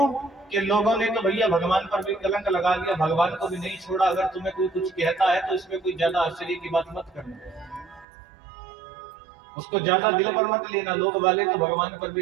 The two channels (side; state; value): left; drops out; at 8.1 s